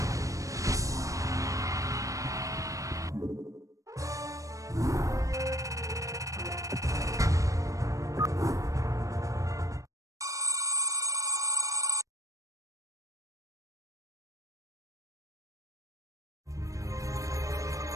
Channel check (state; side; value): late; left; 0.16 ms